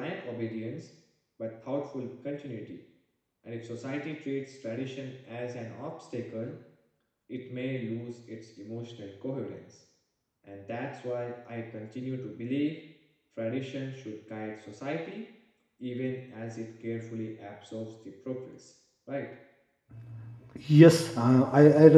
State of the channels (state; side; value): identical; both; correlation 1.00